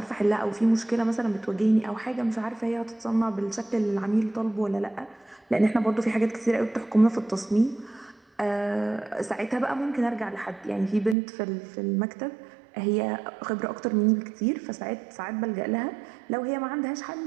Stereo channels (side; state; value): left; drops out; at 11.2 s